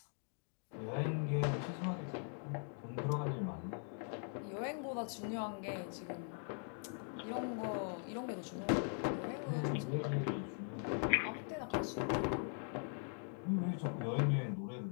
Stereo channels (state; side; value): silent; right; 50 dB below the other